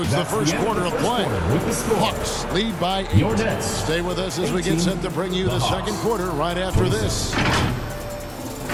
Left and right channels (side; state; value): both; identical; correlation 1.00